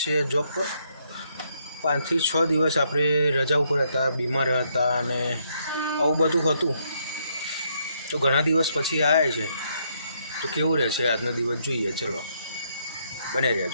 જોબ પર। 5 થી 6 દિવસ આપણે રજા ઉપર હતા, બીમાર હતા અને આવું બધું હતું। તો ઘણા દિવસ પછી આવ્યા છે, તો કેવું રહેશે આજનો દિવસ જોઈએ। ચલો બને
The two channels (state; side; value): inverted; both; correlation -0.74